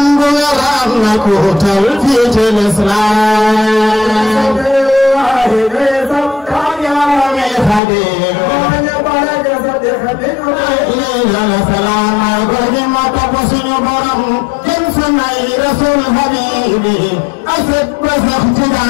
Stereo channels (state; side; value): drops out; right; at 7.8 s